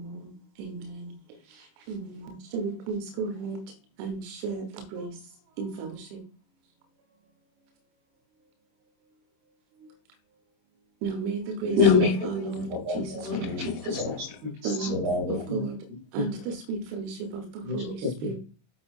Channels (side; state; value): left; late; 26 ms